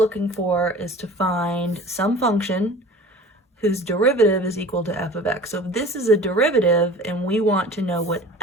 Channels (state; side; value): normal; both; correlation 0.42